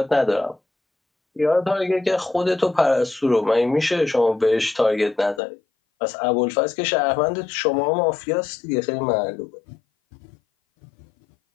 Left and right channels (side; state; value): right; drops out; at 5.4 s